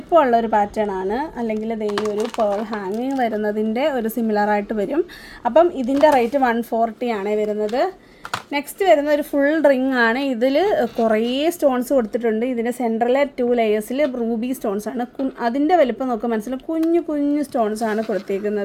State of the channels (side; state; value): both; identical; correlation 1.00